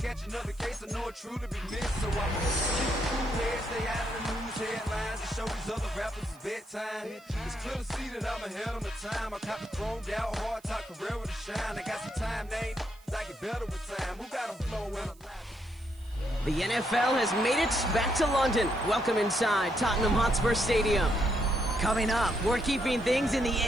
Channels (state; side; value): noise; right; hiss, 28 dB below the sound